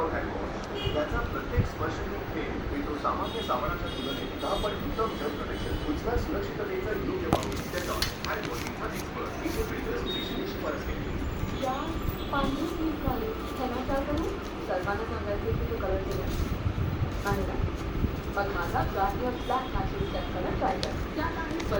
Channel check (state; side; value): identical; both; correlation 1.00